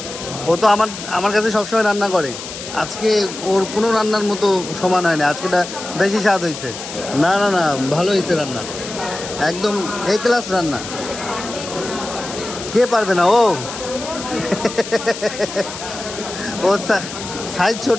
ও তো আমার কাছে সবসময় রান্না করে, আজকে ওর কোনো রান্নার মতো সমান হয় না, আজকেটা বেশি স্বাদ হয়েছে। না না না ভালো হয়েছে রান্না, একদম এ ক্লাস রান্না। কে পারবে না? ও ওর সাইজ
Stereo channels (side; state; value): left; noise; hiss, 10 dB below the sound